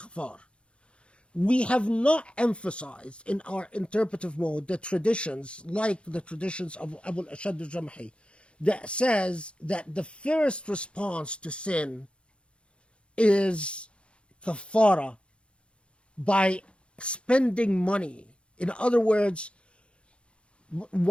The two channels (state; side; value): late; right; 0.058 ms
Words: We have not emphasized in our interpretive mode the traditions, like the traditions of Abu al-Ashad al-Jamhi, that says that the first response to sin is kafara, by spending money. In other words,